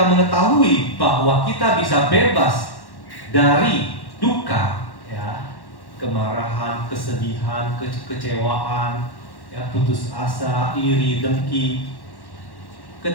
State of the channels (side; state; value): right; late; 1.1 ms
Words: mengetahui bahwa kita bisa bebas dari duka, ya, kemarahan, kesedihan, kecewaan, ya, putus asa, iri, dengki.